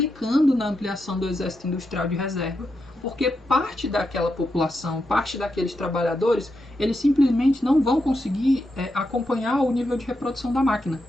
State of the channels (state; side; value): normal; both; correlation 0.85